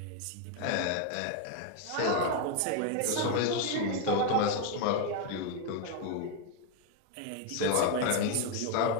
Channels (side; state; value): both; different; correlation 0.01